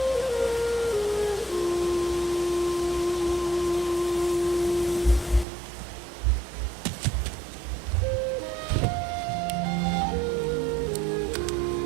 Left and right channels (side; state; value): left; drops out; at 5.5 s